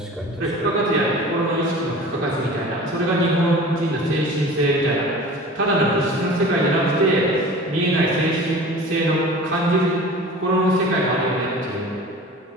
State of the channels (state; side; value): normal; both; correlation 0.40